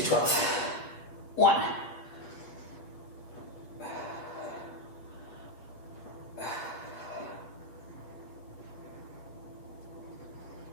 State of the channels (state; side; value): late; right; 7.9 ms